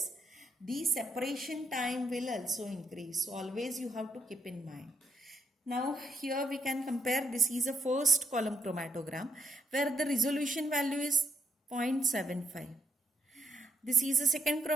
the separation time will also increase. So always you have to keep in mind. Now here we can compare, this is a first column chromatogram where the resolution value is 0.75. This is a second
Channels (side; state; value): both; normal; correlation 0.76